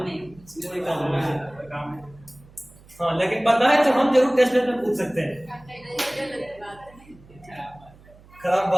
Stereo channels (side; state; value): right; noise; hum, 24 dB below the sound